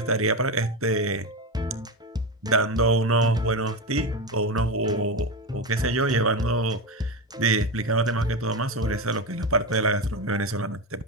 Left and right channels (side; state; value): both; normal; correlation 0.15